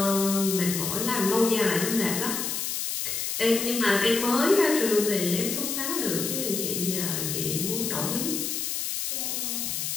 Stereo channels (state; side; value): noise; left; hiss, 2 dB below the sound